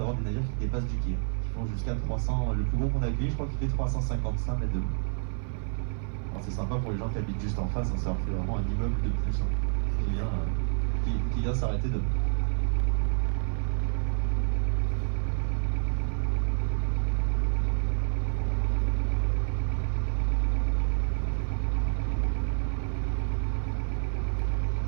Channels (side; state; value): left; silent; 55 dB below the other